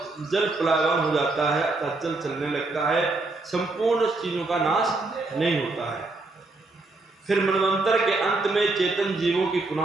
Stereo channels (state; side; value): quieter; left; 3.3 dB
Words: जल प्लावन हो जाता है, अर्थात जल चलने लगता है। संपूर्ण चीजों का नाश नहीं होता है। फिर मनवंतर के अंत में चेतन जीवों की पुनः